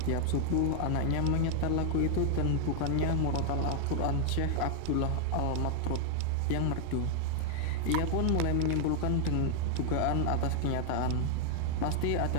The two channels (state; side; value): different; both; correlation 0.00